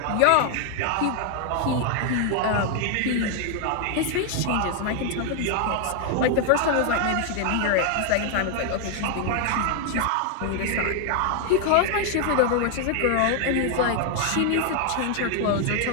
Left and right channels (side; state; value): both; different; correlation 0.00